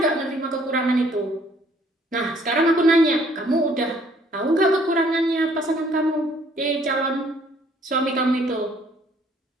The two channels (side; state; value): both; normal; correlation 0.62